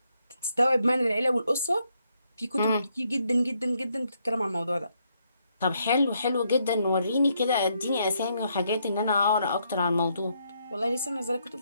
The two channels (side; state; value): both; inverted; correlation -0.75